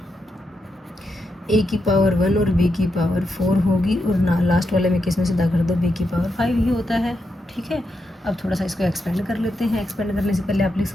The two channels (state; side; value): normal; both; correlation 0.84